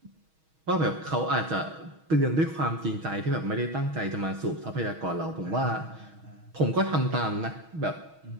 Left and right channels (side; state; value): left; late; 6.3 ms